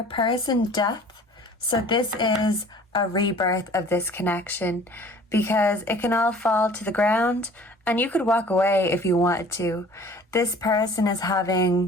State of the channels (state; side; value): normal; both; correlation 0.49